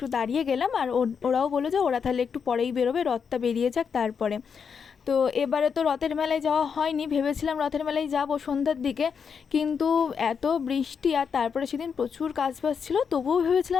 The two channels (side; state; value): right; quieter; 6.5 dB